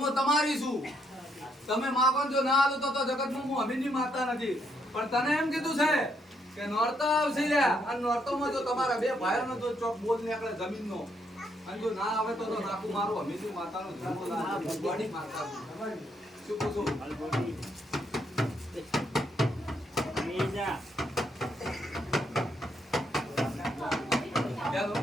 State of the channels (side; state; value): both; normal; correlation 0.75